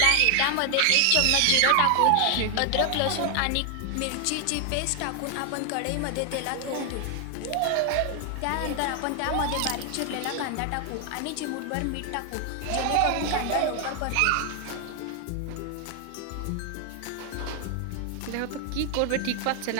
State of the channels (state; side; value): different; both; correlation 0.00